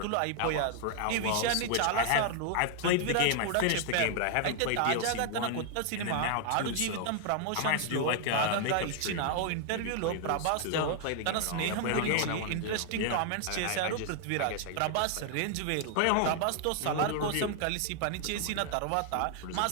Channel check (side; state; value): both; different; correlation 0.00